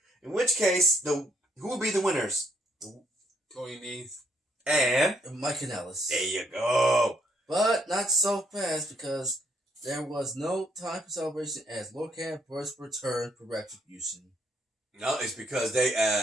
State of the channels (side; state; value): both; normal; correlation 0.71